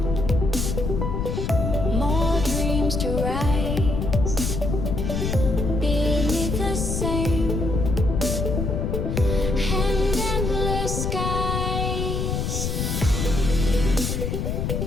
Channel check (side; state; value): left; noise; rumble, 1 dB below the sound